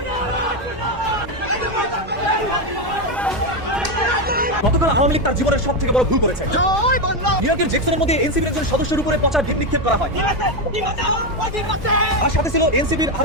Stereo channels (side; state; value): both; normal; correlation 0.09